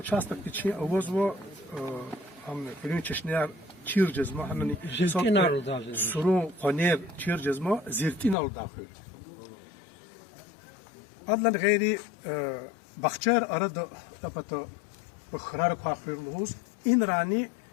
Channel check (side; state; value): right; drops out; at 8.3 s